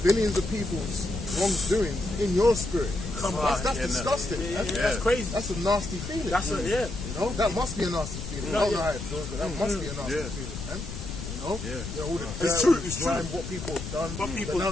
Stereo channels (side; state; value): left; noise; rumble, 8 dB below the sound